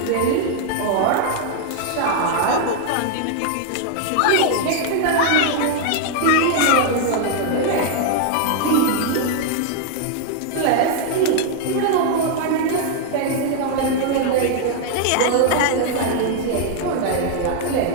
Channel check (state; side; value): different; both; correlation 0.00